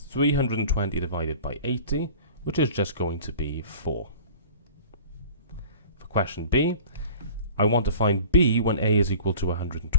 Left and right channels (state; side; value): inverted; both; correlation -0.43